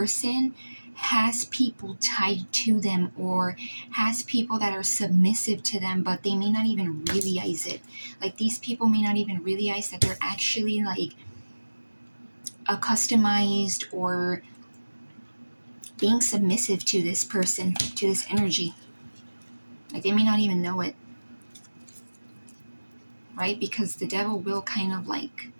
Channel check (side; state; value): both; inverted; correlation -1.00